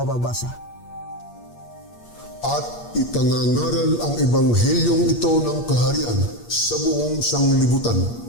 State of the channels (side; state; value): right; late; 8.5 ms